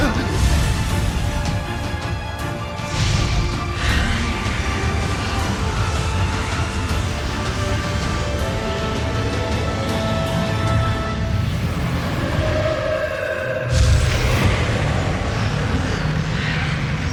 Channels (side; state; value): both; identical; correlation 1.00